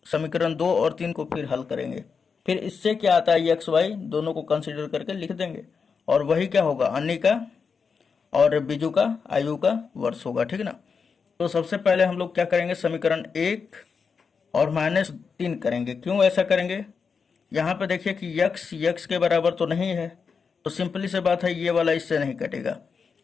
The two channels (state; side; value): quieter; right; 5.6 dB